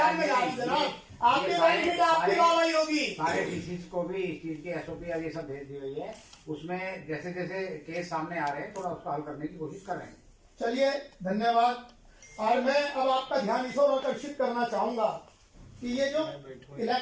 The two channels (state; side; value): identical; both; correlation 1.00